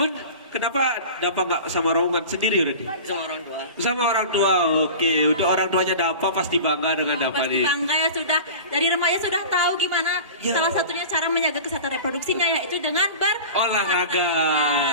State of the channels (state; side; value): inverted; both; correlation -0.35